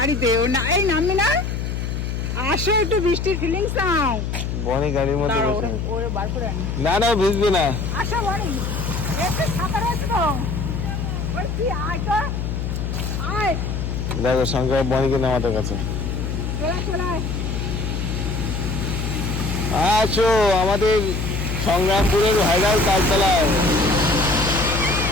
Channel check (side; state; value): left; noise; hum, 3 dB below the sound